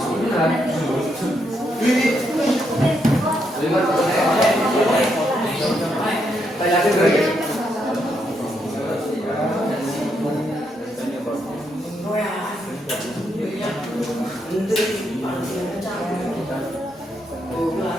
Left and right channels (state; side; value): normal; both; correlation 0.78